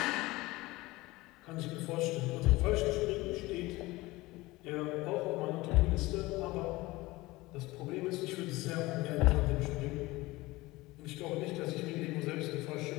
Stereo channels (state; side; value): quieter; right; 20.4 dB